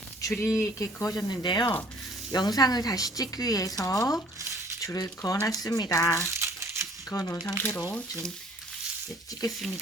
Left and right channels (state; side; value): normal; both; correlation 0.55